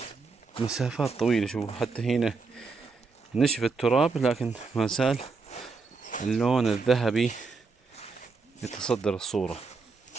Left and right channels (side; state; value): left; quieter; 4.4 dB